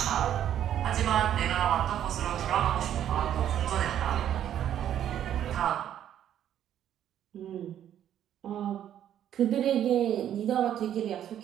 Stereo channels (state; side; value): quieter; left; 10.5 dB